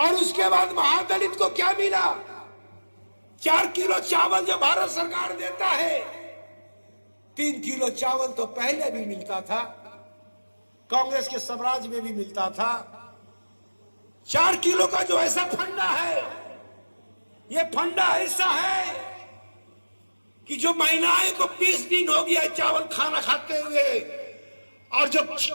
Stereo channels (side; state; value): both; inverted; correlation -1.00